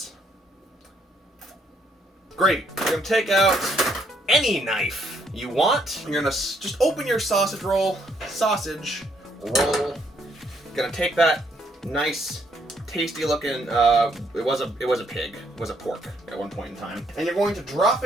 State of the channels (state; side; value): normal; both; correlation 0.71